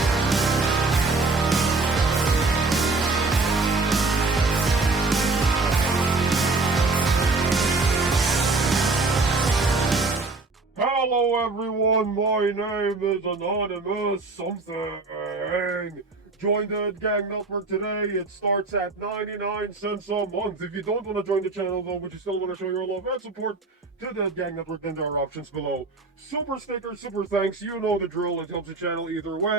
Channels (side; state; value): left; quieter; 3.6 dB